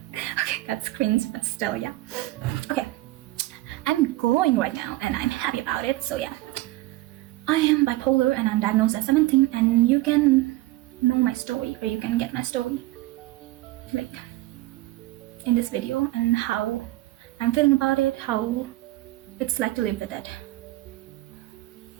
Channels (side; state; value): left; quieter; 18.0 dB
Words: Okay, that's cringe, but still, yeah. Okay, I'm glowing right now and I'm happy about it. So yeah, I am bipolar and I'm diagnosed at 17, and you can know my story, or you can get my story in this video, and how I'm feeling about it, how it's like to live with it.